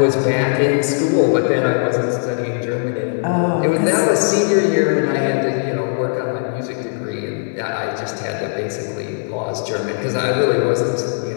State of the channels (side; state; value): right; silent; 65 dB below the other